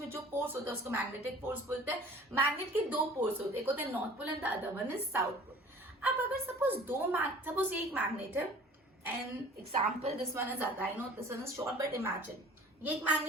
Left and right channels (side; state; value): both; normal; correlation 0.47